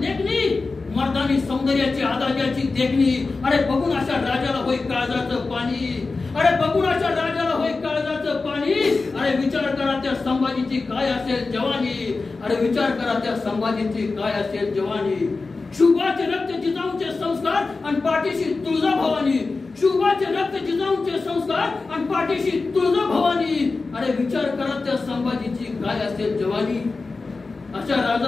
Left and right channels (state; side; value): quieter; right; 3.9 dB